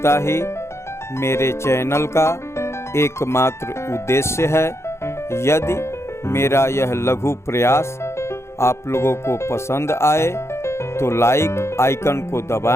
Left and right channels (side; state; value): right; late; 0.13 ms